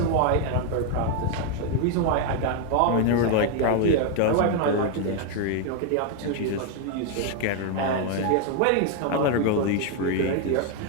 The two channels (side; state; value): both; different; correlation 0.01